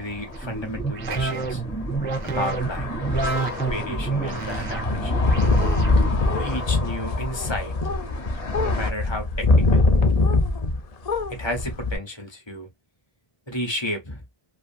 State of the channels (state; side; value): late; right; 1.3 ms